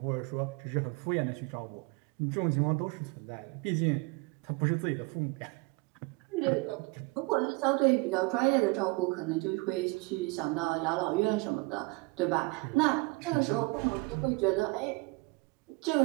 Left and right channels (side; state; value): left; quieter; 26.2 dB